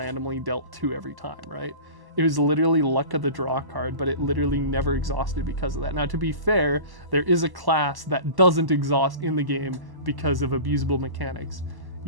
dealt 2 every time, right? It was literally luck of the draw card, but it literally never exhausted because of that. Now, to be fair, there is a class that doesn't exhaust in the game because of abusable mechanics.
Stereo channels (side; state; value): left; late; 1.1 ms